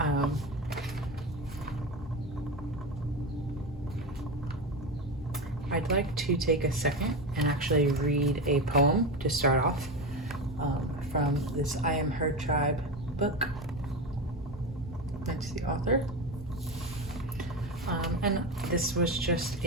I'd like to take a second and actually read a poem to start off from this I Am Her Tribe book. That's the author. And this was just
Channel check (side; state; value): both; normal; correlation 0.19